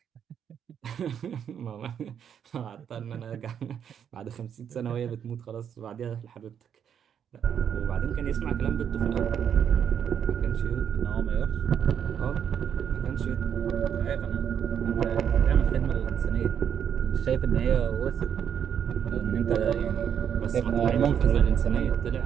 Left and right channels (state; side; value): quieter; left; 8.4 dB